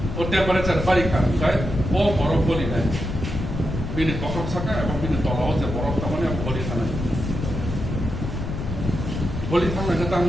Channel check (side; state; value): left; noise; rumble, 5 dB below the sound